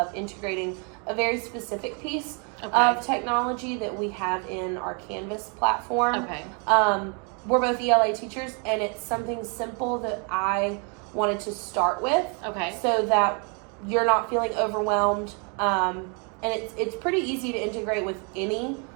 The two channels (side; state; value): left; quieter; 36.7 dB